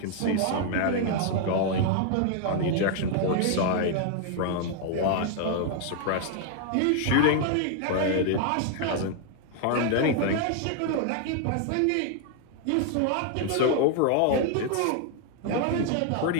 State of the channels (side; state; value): both; different; correlation 0.00